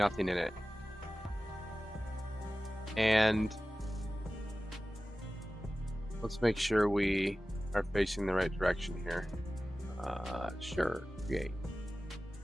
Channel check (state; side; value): normal; both; correlation 0.96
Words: in it. And let's make sure we are facing the right direction here. Sure, create.